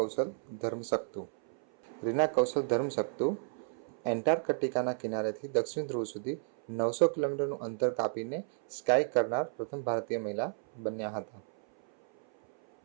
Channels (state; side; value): silent; left; 56 dB below the other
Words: ધર્મશક્તુ. રીના કૌશલ ધર્મશક્તુ એન્ટાર્કટિકાના કિનારેથી દક્ષિણ ધ્રુવ સુધી 900 કિલોમીટરનું અંતર કાપીને સ્કાય કરનાર પ્રથમ ભારતીય મહિલા બન્યા હતા.